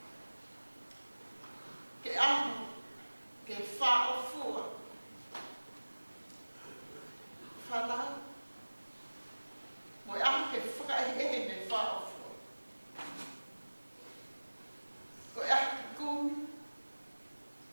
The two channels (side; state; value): both; inverted; correlation -1.00